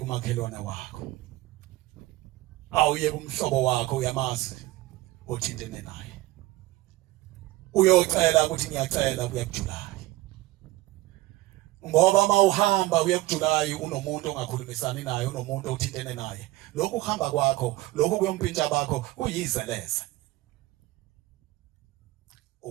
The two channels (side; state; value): left; quieter; 17.9 dB